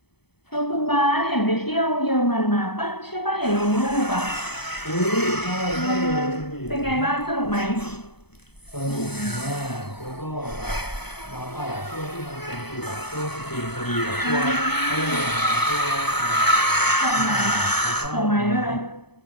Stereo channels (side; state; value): right; late; 0.98 ms